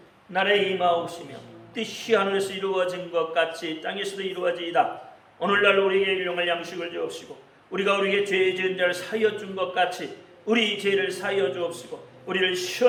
나라에 임하옵시며 뜻이 하늘에서 이루어진 것 같이 땅에서도 이루어지이다. 오늘날 우리에게 일용할 양식을 주옵시고, 우리가 우리에게 죄 지은 자를 사하여 준 것 같이 우리 죄를 사하여 주옵시고, 우리를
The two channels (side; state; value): both; identical; correlation 1.00